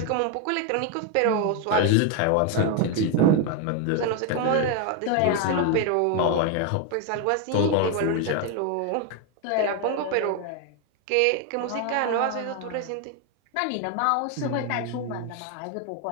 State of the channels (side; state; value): both; different; correlation 0.01